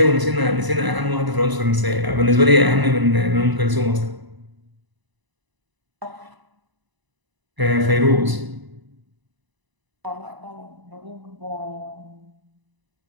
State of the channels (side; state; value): left; late; 1.0 ms